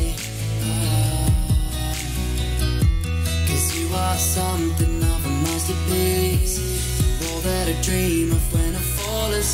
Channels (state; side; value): identical; both; correlation 1.00